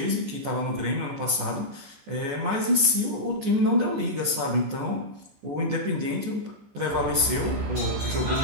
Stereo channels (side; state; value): left; late; 14 ms